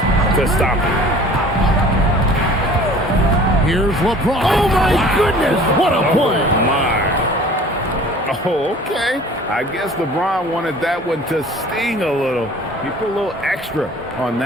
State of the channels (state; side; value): normal; both; correlation 0.47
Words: to stop him. Here's LeBron. Oh, my goodness. What a play. Oh, my. Oh, okay. I guess LeBron wanted that one to sting a little. He put a little extra on